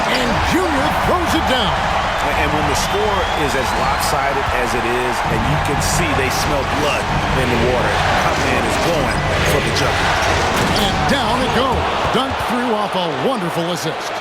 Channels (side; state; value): both; identical; correlation 1.00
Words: and Junior throws it down. And when the score is as lopsided as it is, and you can see they smell blood in the water, our man is going for the jumper. And down it goes. Dunk through off a wonderful assist.